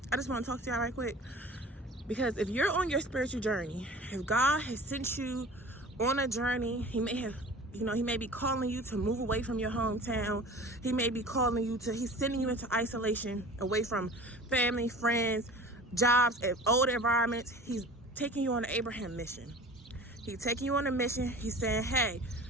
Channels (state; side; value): normal; both; correlation 0.41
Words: just want to talk to y'all right quick, because if you're on your spiritual journey, if God has sent you on a journey, he may be calling you to move away from your hometown. He may be calling you to, he's sending you into isolation, away from family, friends, jobs, and old environments. He's taking you on an Abraham mission. He's taking you on a mission. He's saying, hey,